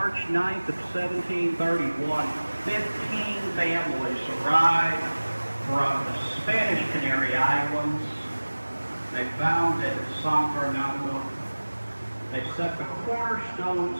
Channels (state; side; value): inverted; both; correlation -1.00